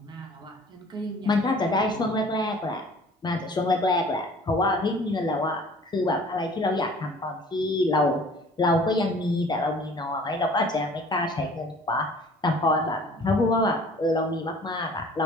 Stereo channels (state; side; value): normal; both; correlation 0.50